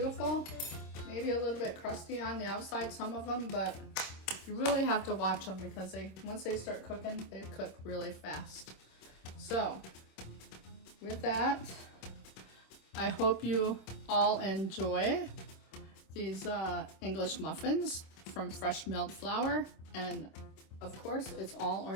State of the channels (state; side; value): late; right; 26 ms